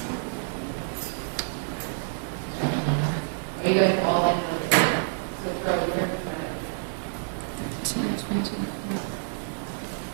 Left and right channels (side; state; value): left; silent; digital silence